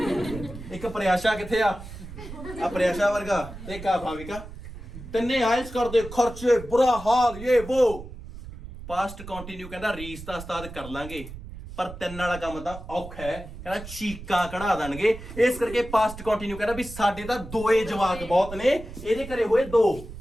एक प्रयाशा किथे आ प्रयाशा वर्गा, एक आ भाविका। तिन्ने आयल्स कर दे, खर्चे बुरा हाल ये वो। पास्ट कंटिन्यू कहना रीस दा उस्ताद कर लांगे, पर 3 वाला काम तां औखा है, कहना चीकां कढ़ा देणगे। इस करके पास्ट कंटिन्यू कहना भी साडे तां 2 जवाक बहुत ने, ਇਹਦੇ ਘਰੇ ਹੋਏ 2।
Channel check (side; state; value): right; noise; rumble, 13 dB below the sound